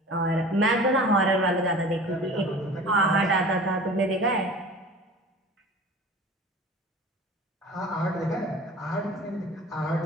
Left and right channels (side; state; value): both; normal; correlation 0.41